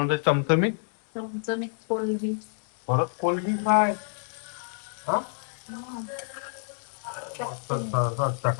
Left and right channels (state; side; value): silent; right; digital silence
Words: चमचमीत. चमचमीत कोलबी. परत कोलबी काय? हा, मस्त